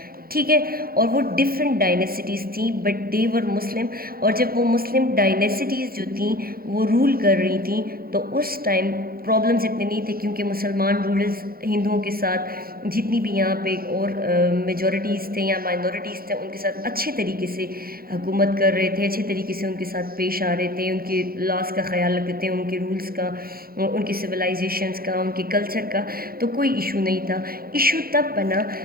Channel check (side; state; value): left; late; 0.43 ms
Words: ٹھیک ہے، اور وہ ڈفرینٹ ڈائنیسٹیز تھیں بٹ دے ور مسلم. اور جب وہ مسلم ڈائنیسٹیز جو تھیں وہ رول کر رہی تھیں تو اس ٹائم پرابلمز اتنے نہیں تھے، کیونکہ مسلمان رولرز ہندوؤں کے ساتھ جتنی بھی یہاں پہ اور میجورٹیز تھے یا مائنورٹیز تھے ان کے ساتھ اچھے طریقے سے حکومت کر رہے تھے، اچھے طریقے سے ان کے ساتھ پیش آ رہے تھے، ان کے لاس کا خیال رکھتے تھے، ان کے رولز کا، ان کی سویلائزیشنز کا، ان کے کلچر کا. تو کوئی ایشو نہیں تھا. ایشو تب بنا